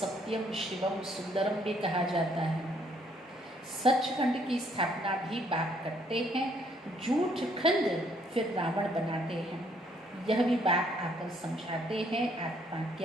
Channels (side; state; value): both; normal; correlation 0.67